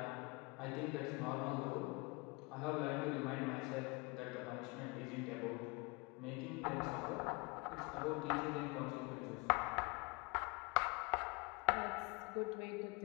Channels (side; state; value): right; quieter; 28.5 dB